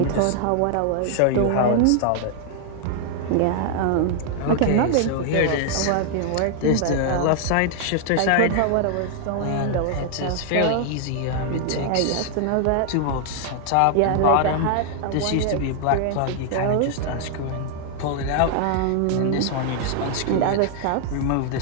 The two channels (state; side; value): different; both; correlation 0.00